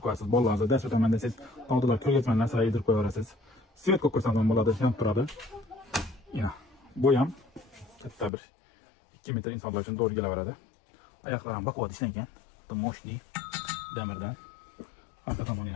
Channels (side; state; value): right; drops out; at 8.3 s